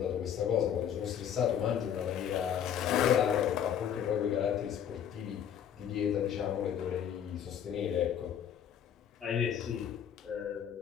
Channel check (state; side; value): quieter; right; 9.1 dB